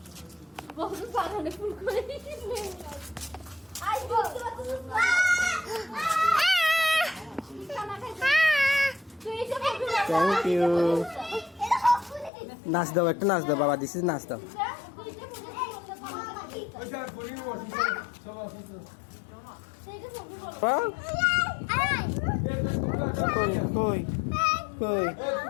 বহুত বাগানে ফুল করে। আই বল। Thank you. নাচ দাও, একটা নাচ দাও বাবা, দিস ইজ নাচ দাও। কই কই কই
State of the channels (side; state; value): right; drops out; at 12.3 s